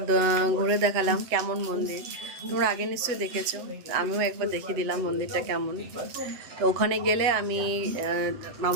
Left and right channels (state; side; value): late; left; 7.9 ms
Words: ঘুরে দেখালাম কেমন মন্দির তোমরা আগে নিশ্চয়ই দেখেছো আমিও একবার দেখিয়ে দিলাম মন্দিরটা কেমন তো ওখানে গেলে আমি